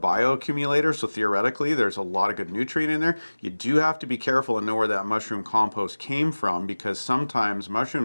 so theoretically there's a lot of good nutrient in there. You do have to be careful and know where that mushroom compost came from, because sometimes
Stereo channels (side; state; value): both; inverted; correlation -1.00